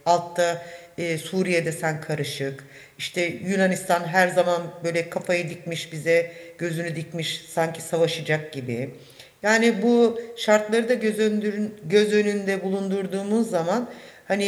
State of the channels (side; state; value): both; identical; correlation 1.00